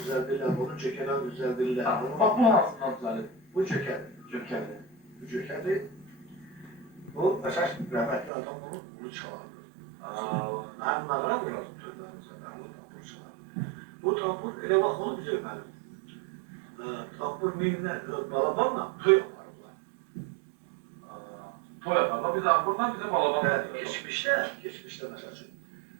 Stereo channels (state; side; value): drops out; left; at 8.3 s